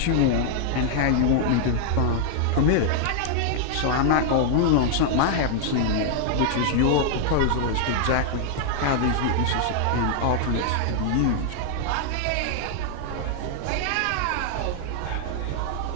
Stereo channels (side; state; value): both; different; correlation -0.01